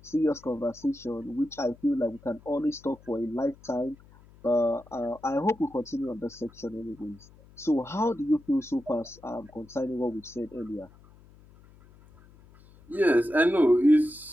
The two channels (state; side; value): noise; left; hum, 25 dB below the sound